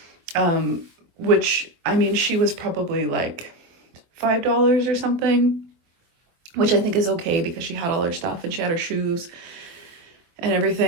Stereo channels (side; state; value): left; late; 24 ms